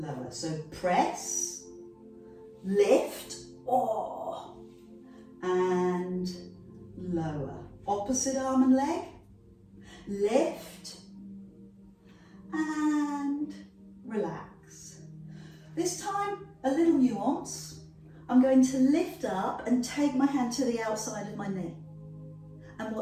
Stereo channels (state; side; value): identical; both; correlation 1.00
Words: So press, lift, oh, and lower. Opposite arm and leg, lift, and relax. This time, a little nuance. I'm going to lift up and take my hand to the outside of my knee. And